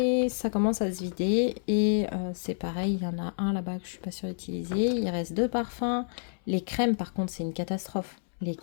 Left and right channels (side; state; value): right; silent; 59 dB below the other